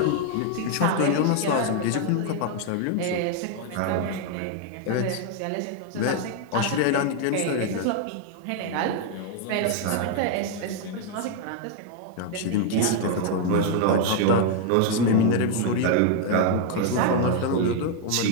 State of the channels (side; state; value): both; different; correlation 0.00